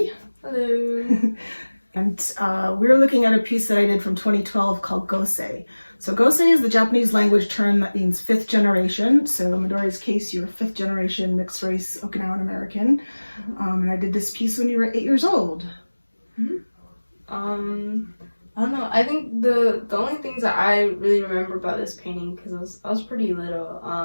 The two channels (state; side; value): inverted; both; correlation -1.00